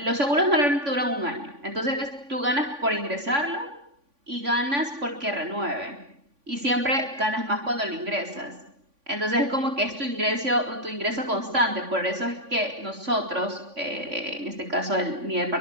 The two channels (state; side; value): late; left; 3.5 ms